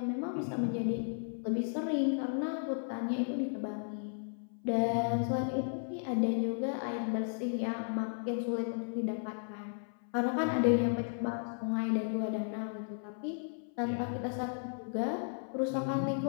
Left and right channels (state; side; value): silent; right; 55 dB below the other